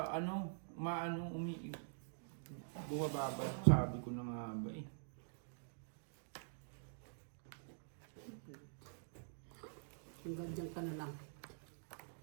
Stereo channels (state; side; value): silent; left; digital silence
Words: ano, maano, bumababa. Sabi ko na nga ba eh. Hanggang dyan ka na lang.